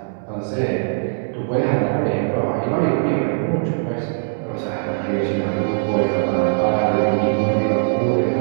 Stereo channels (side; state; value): left; silent; digital silence